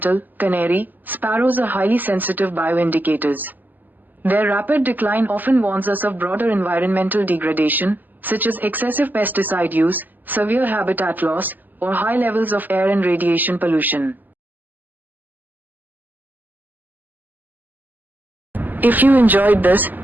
canary. Sparrows are highly sensitive bioindicators. Their rapid decline often warns us of broader environmental degradation, such as excessive pesticide use, severe habitat loss, or high levels of air and radiation pollution. If you enjoyed this,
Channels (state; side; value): late; left; 0.086 ms